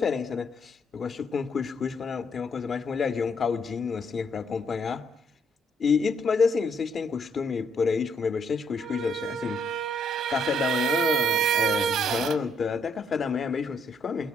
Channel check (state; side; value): normal; both; correlation 0.71